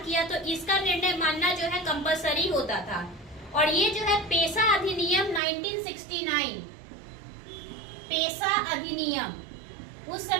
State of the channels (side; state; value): left; drops out; at 5.4 s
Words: तो इसका निर्णय मानना जो है कंपलसरी होता था। और ये जो है पेशा अधिनियम 1969, पेशा अधिनियम, उस